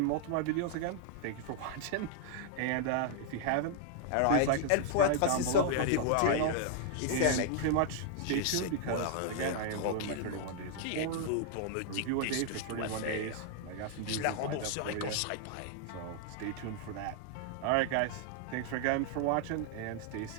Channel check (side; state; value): both; different; correlation 0.00